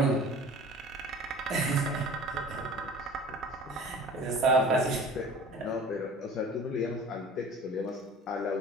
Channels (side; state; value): both; normal; correlation 0.43